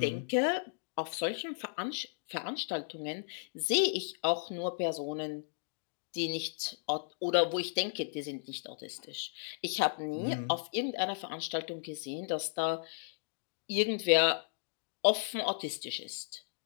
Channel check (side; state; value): right; silent; digital silence